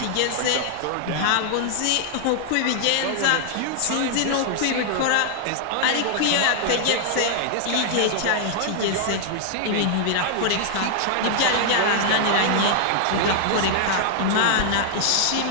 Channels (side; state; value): both; different; correlation -0.01